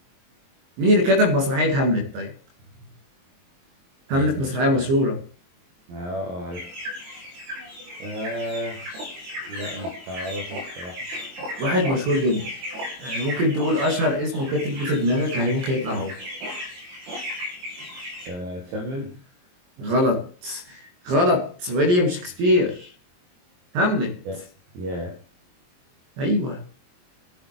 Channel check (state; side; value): late; left; 23 ms